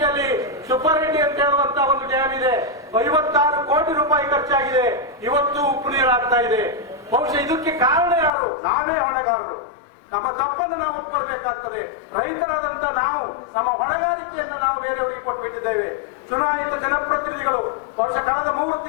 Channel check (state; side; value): drops out; right; at 8.3 s